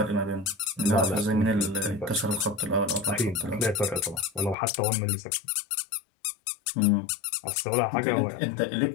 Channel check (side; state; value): right; drops out; at 4.5 s